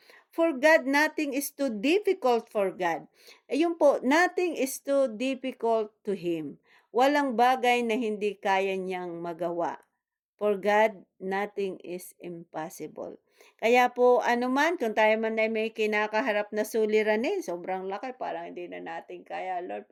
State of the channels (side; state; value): both; identical; correlation 1.00